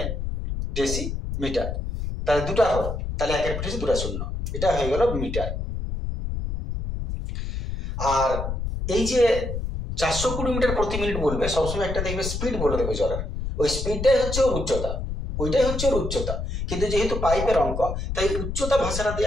ডেসি মিটার। তাহলে দুটা ঘর, তাহলে একের পিঠে দুটা শূন্য, এটা হয়ে গেল মিটার। আর এই যে 420 মিটার প্রতি মিনিট বলবে, সবসময় একটা দেখবে স্পিড বলে দেবে জলের, ওই স্পিডটাই হচ্ছে ওর উচ্চতা। ওইটাই হচ্ছে ওর উচ্চতা। কিন্তু যেহেতু পাইপের অঙ্ক, তাই উচ্চতা ভাষাটা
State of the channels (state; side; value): noise; left; rumble, 4 dB below the sound